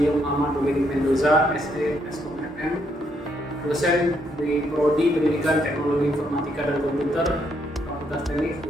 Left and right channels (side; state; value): both; normal; correlation 0.74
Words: Muhammad Dominic Mendoza, SD Eskom FM, dosen di Prodi Pendidikan Teknologi Informatika dan Komputer, Fakultas Teknik